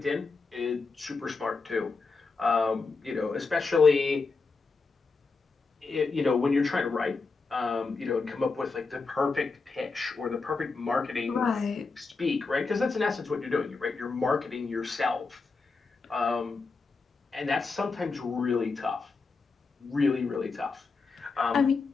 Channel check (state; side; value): quieter; right; 4.3 dB